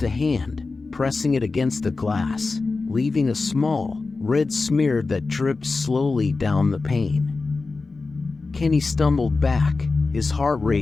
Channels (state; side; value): quieter; right; 3.9 dB